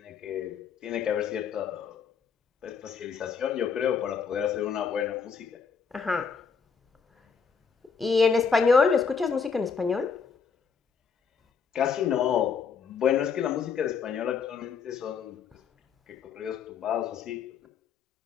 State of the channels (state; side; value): quieter; right; 6.1 dB